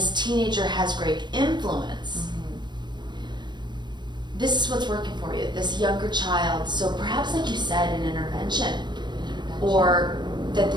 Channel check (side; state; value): left; late; 0.22 ms